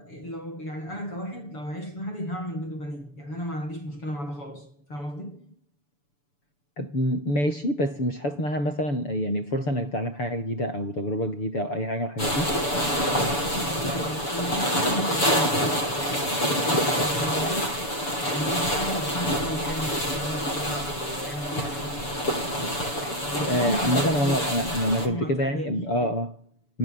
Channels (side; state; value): right; late; 6.9 ms